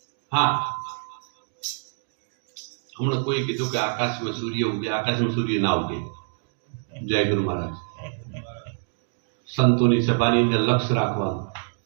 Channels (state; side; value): silent; left; 61 dB below the other